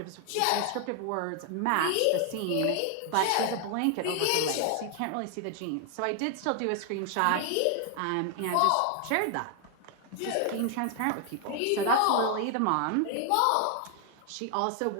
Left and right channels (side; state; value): both; different; correlation 0.00